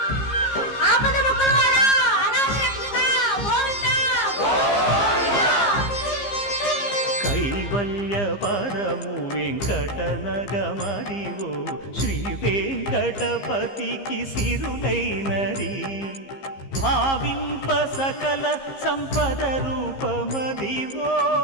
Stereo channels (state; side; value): late; right; 15 ms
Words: కైవల్య పరము వెంకటనగమదివో శ్రీ వెంకటపతికి సిరులైనది భావింప సకల సంపద రూపమదివో